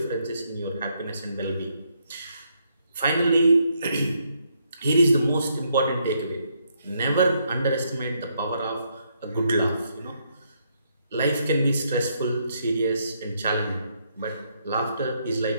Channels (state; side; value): inverted; both; correlation -0.75